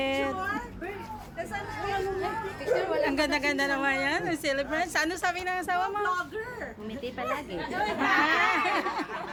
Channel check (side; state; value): both; identical; correlation 1.00